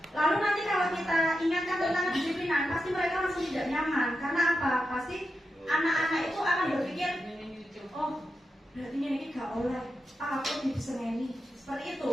lalu nanti kalau kita ingatkan tentang kedisiplinan, pasti mereka langsung tidak nyaman. Karena apa? Pasti anak-anak itu akan berpikir, oh berarti ini gak oleh, aku bisa ini. Seperti itu.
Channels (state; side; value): normal; both; correlation 0.88